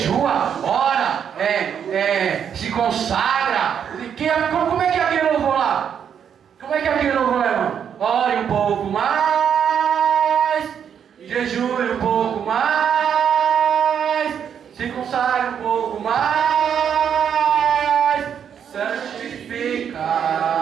ora, se consagra? Como é que é aquele louvor lá? Como é que é aquele louvor lá, irmão? Ore um pouco mais, jejue um pouco mais, se consagre um pouco mais, santifica.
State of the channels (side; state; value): left; quieter; 8.1 dB